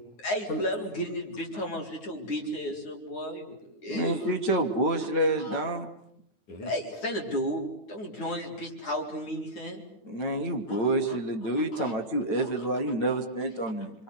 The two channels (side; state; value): right; late; 9.5 ms